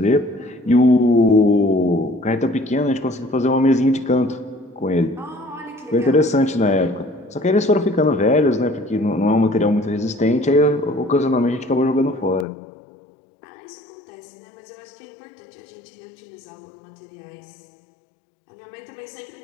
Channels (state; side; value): drops out; right; at 12.5 s